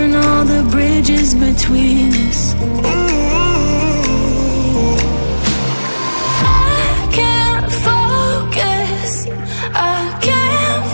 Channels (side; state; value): both; inverted; correlation -1.00